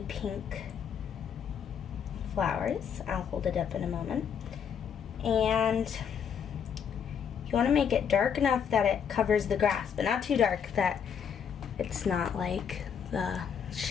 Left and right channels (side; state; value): right; quieter; 7.6 dB